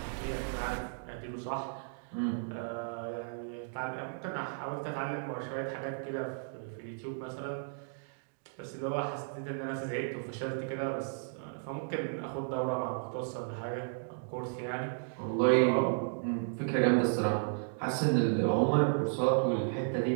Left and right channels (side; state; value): left; silent; digital silence